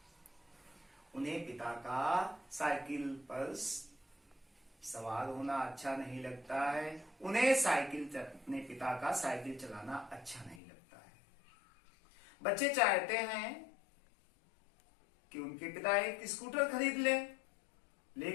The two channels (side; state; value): right; drops out; at 10.6 s